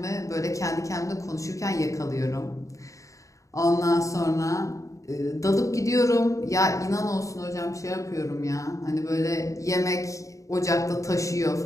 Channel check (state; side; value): late; right; 0.16 ms